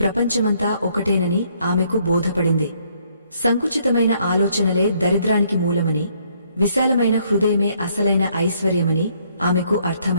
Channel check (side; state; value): both; inverted; correlation -0.68